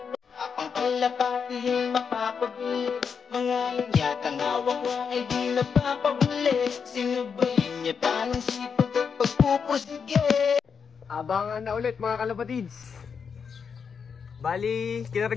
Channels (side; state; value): right; quieter; 6.3 dB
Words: ang kalapati mapapabilis. Mga yatang hawak ko ay di napapabilis. Sinubayin niya pa ng sipag at pagpupusige. Abangan na ulit mga kalapatids. Bali,